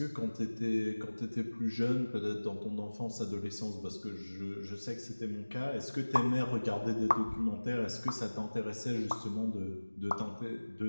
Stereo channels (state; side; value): inverted; both; correlation -1.00